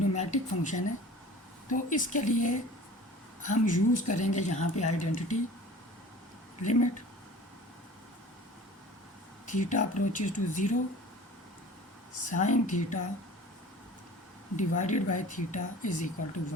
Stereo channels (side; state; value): both; normal; correlation 0.43